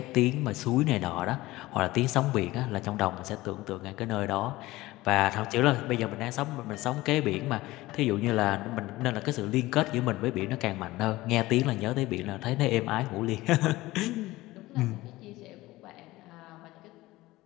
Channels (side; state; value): right; quieter; 18.5 dB